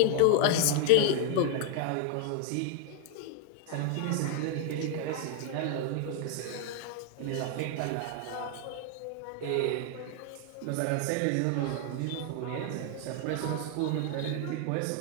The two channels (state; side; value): different; both; correlation 0.00